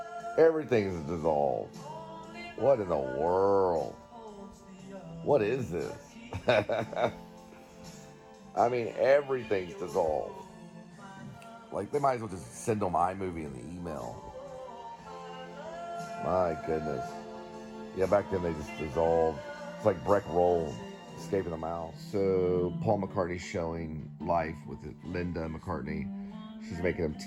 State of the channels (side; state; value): both; identical; correlation 1.00